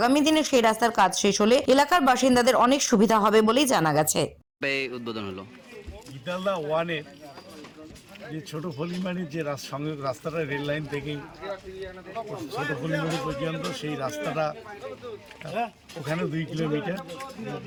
দিনে সেই রাস্তার কাজ শেষ হলে এলাকার বাসিন্দাদের অনেক সুবিধা হবে বলেই জানা গেছে। উদ্বোধন হলো গীতালদহ ওয়ানের যে ছোট ফলিমানির যে সংযোগ রাস্তাটা রেল লাইন থেকে ছোট ফলিমানি পর্যন্ত, সেই রাস্তাটা ওখানে 2 কিলোমিটার,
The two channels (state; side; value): identical; both; correlation 1.00